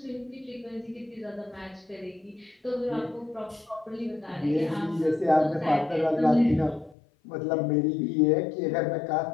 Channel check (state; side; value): drops out; right; at 7.0 s